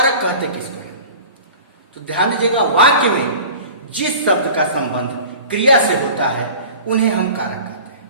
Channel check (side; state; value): both; inverted; correlation -0.40